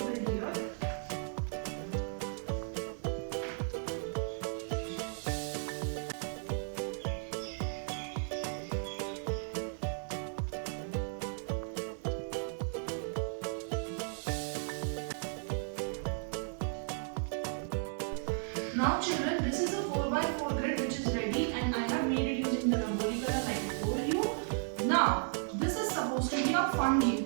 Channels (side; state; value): left; silent; digital silence